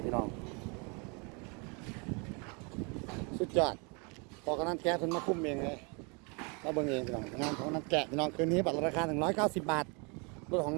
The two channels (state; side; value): quieter; left; 32.7 dB